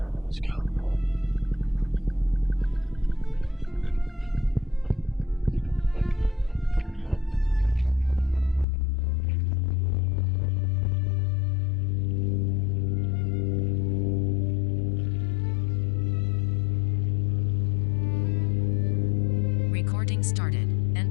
let's go. Recording started.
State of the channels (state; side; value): drops out; right; at 8.7 s